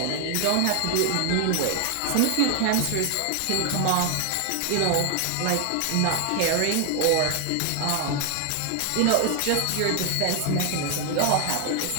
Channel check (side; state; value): both; different; correlation 0.00